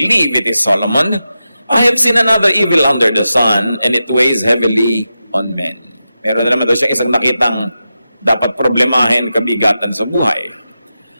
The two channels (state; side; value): inverted; both; correlation -0.91